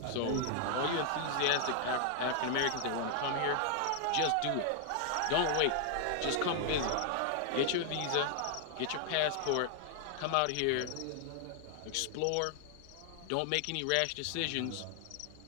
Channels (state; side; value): different; both; correlation 0.00